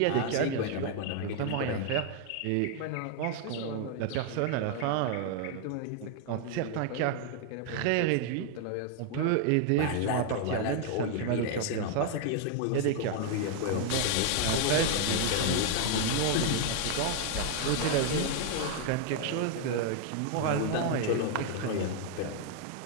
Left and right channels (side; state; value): both; different; correlation 0.00